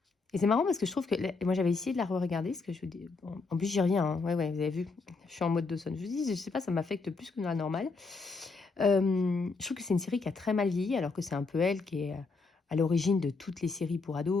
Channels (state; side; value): quieter; right; 4.1 dB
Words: Et c'est marrant parce que je trouve que... moi, j'avais essayé de la re-regarder, parce que je dis... Bon, en plus, j'y reviens, hein. Ouais, vous avez vu. Je suis en mode Dawson. Je vous dis, je sais pas, ça m'affecte plus que la normale. Je trouve que c'est une série qui a très mal vieilli, alors que c'est un peu elle qui est à l'origine de toutes les séries pour